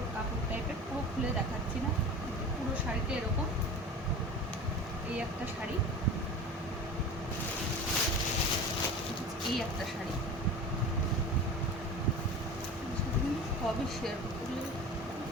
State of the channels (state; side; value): normal; both; correlation 0.34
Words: কাপড় টাইপের, পুরো খুলে দেখাচ্ছি না, পুরো শাড়িটা এরকম। এই একটা শাড়ি, এই একটা শাড়ি, সবই শেয়ার করতে,